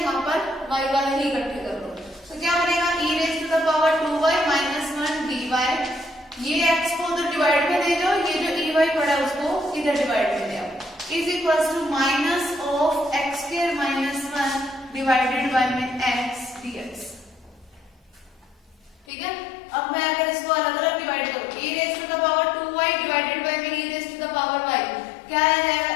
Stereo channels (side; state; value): right; drops out; at 19.1 s